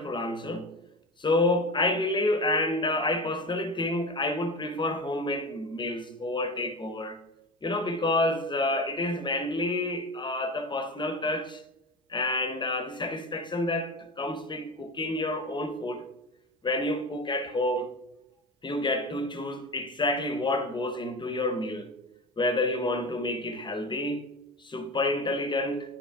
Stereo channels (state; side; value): normal; both; correlation 0.27